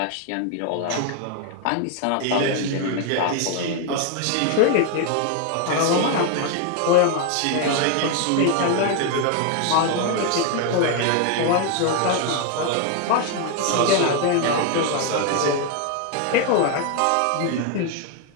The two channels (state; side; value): different; both; correlation 0.01